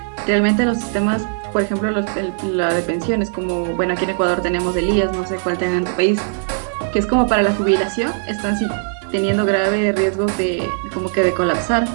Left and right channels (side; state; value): left; silent; digital silence